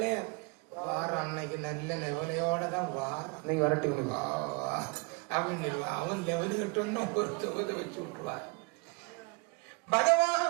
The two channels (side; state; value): left; quieter; 30.3 dB